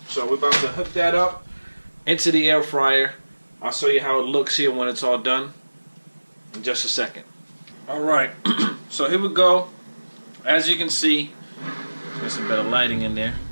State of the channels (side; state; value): both; inverted; correlation -1.00